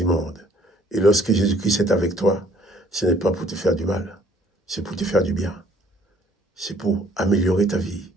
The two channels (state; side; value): normal; both; correlation 0.60